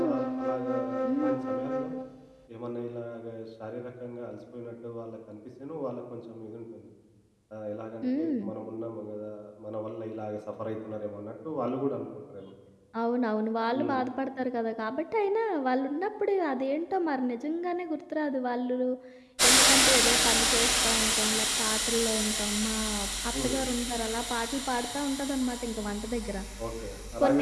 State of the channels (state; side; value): identical; both; correlation 1.00